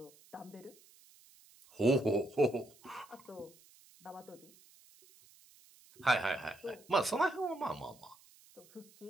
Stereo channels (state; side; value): noise; right; hiss, 26 dB below the sound